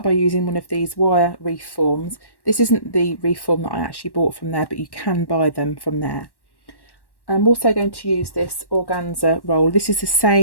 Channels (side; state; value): right; late; 1.1 ms